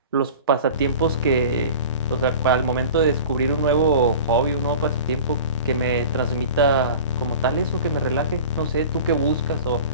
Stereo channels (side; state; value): both; inverted; correlation -0.38